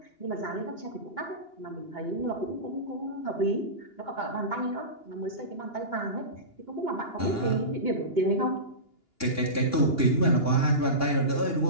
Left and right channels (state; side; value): late; right; 2.8 ms